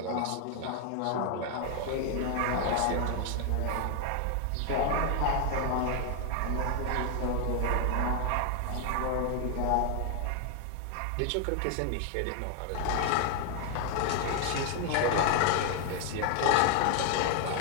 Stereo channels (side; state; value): both; different; correlation 0.00